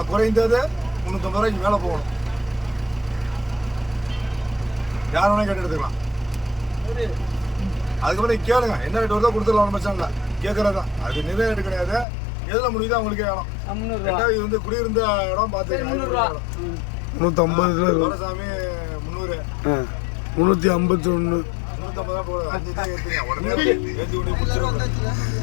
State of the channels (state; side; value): drops out; right; at 12.1 s